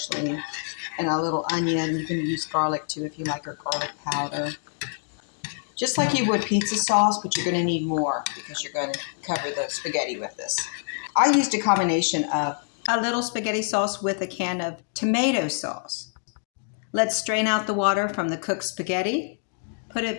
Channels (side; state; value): right; silent; 61 dB below the other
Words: And a little onion. You can use garlic too if you like, or garlic powder. Just like you would pizza sauce, but you're going to need more because you're going to cover the spaghetti with this. I used a combination of a little spaghetti sauce with a can of tomato sauce. Let's strain out the water from the cooked spaghetti, put it